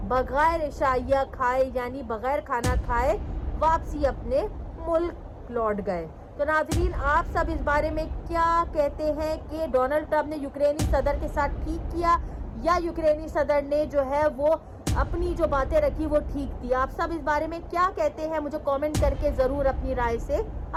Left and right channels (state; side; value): identical; both; correlation 1.00